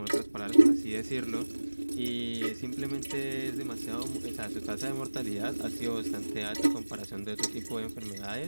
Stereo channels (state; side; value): inverted; both; correlation -1.00